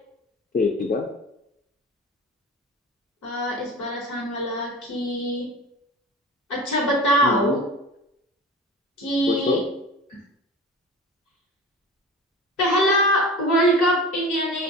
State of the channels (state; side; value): normal; both; correlation 0.35